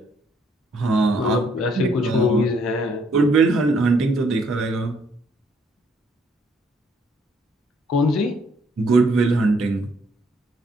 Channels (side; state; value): both; normal; correlation 0.68